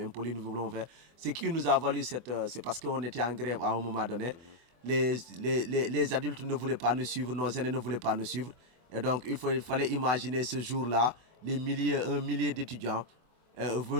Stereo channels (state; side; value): late; left; 24 ms